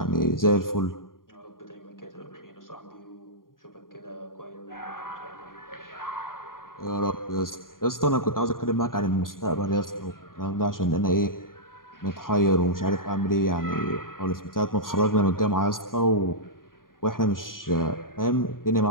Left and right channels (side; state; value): right; late; 0.91 ms